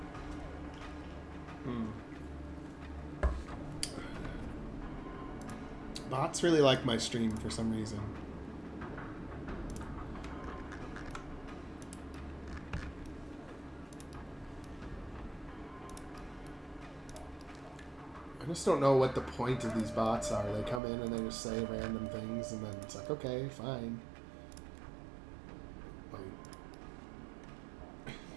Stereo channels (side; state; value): left; drops out; at 20.8 s